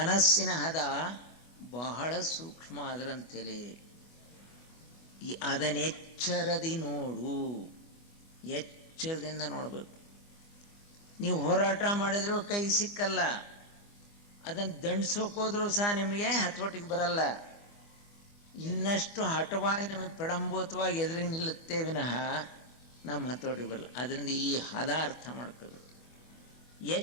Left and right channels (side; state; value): right; late; 24 ms